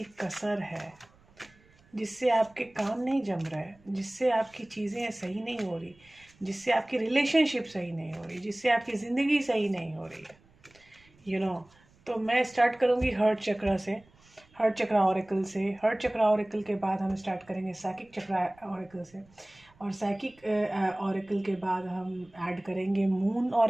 कसर है जिससे आपके काम नहीं जम रहा है, जिससे आपकी चीज़ें सही नहीं हो रही, जिससे आपकी रिलेशनशिप सही नहीं हो रही, जिससे आपकी ज़िंदगी सही नहीं हो रही है। तो मैं स्टार्ट करूँगी हर्ट चक्रा से, हर्ट चक्रा ऑरेकल से। हर्ट चक्रा ऑरेकल के बाद हम स्टार्ट करेंगे साइकिक चक्रा ऑरेकल से, और साइकिक ऑरेकल के बाद हम ऐड करेंगे मून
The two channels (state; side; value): noise; right; rumble, 30 dB below the sound